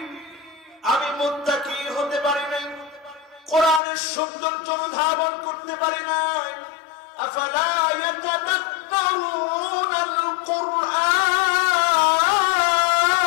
আমি মুত্তাকি হতে পারি নাই, কোরআনের সৌন্দর্য অনুধাবন করতে পারি নাই। আফালা ইয়াতাদাব্বারুনাল কুরআন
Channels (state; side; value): drops out; right; at 3.8 s